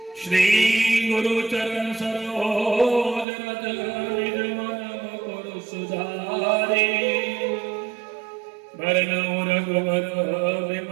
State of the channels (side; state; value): left; drops out; at 3.2 s